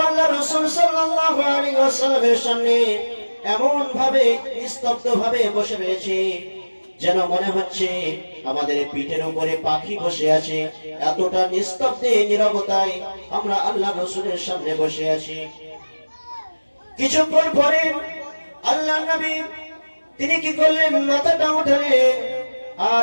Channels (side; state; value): both; inverted; correlation -1.00